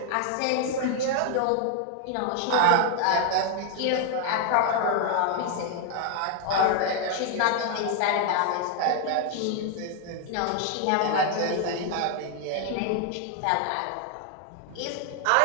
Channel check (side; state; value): both; different; correlation 0.00